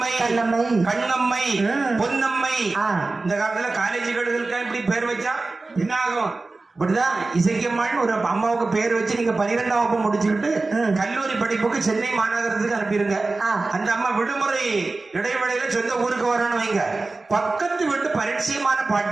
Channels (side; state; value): left; quieter; 3.5 dB